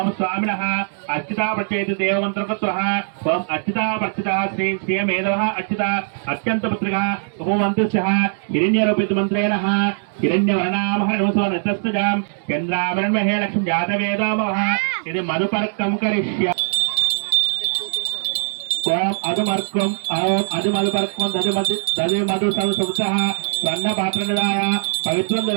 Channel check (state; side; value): silent; left; digital silence